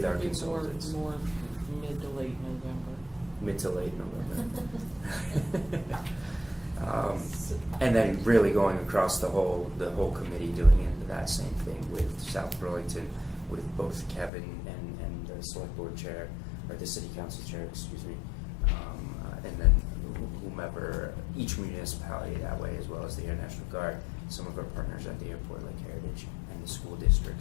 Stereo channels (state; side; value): drops out; right; at 14.3 s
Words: our consultants. More mid to late November. Mid to late November. And then really going across the whole committee, doing that same thing with South Burlington, with both Kevin and the select board chair, or the city council chair, excuse me, and then whomever, each municipality that way, as well as the Air National Guard, some of our partners at the airport like Heritage, and the school